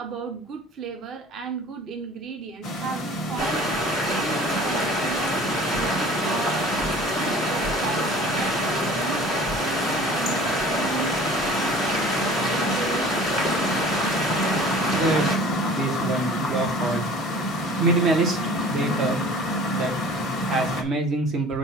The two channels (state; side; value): normal; both; correlation 0.45